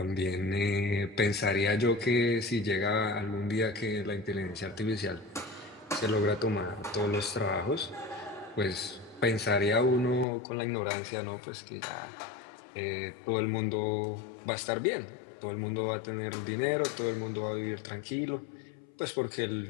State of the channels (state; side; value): drops out; right; at 10.2 s